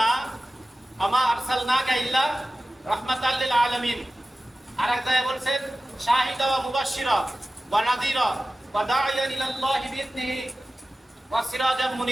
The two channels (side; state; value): both; normal; correlation 0.95